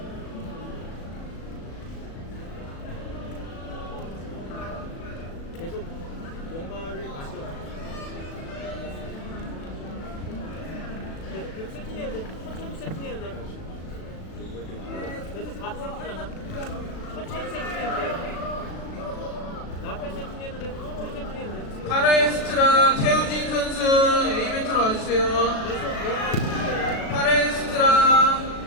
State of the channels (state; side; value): late; right; 36 ms